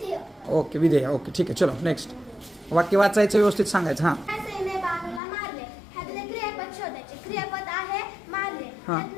ओके, विधेय. ओके, ठीक आहे. चलो नेक्स्ट. वाक्य वाचायचं, व्यवस्थित सांगायचं. हा क्रियापद आहे मारले.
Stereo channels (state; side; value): drops out; right; at 5.2 s